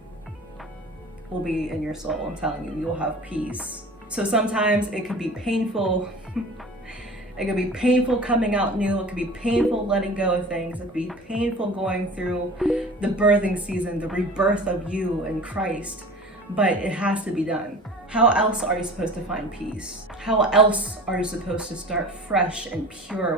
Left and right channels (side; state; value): both; normal; correlation 0.40